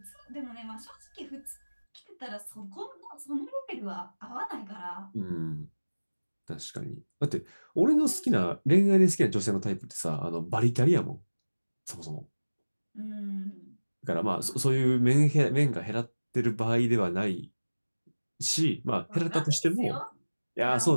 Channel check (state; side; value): inverted; both; correlation -1.00